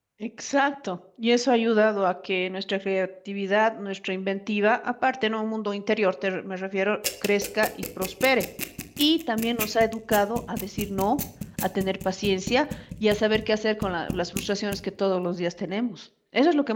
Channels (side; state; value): both; identical; correlation 1.00